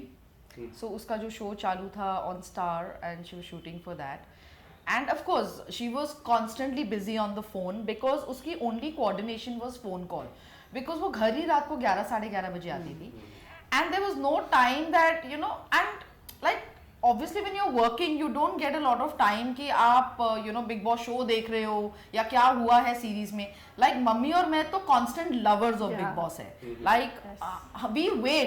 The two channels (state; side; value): identical; both; correlation 1.00